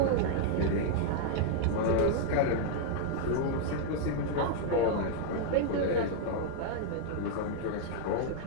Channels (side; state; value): both; different; correlation -0.01